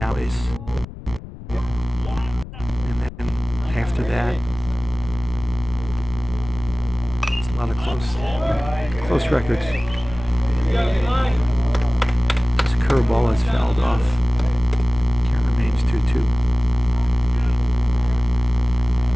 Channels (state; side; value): noise; left; rumble, 14 dB below the sound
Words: alleys. And then after that, it's a lot of close records. This curveball is fouled off. Count remains 2-2.